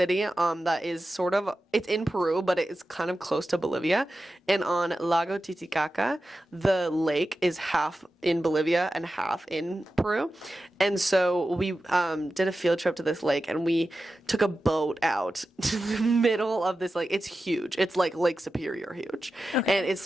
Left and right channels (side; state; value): both; normal; correlation 0.93